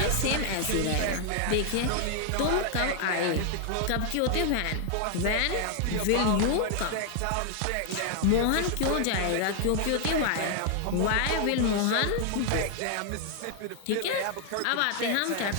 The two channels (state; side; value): different; both; correlation 0.00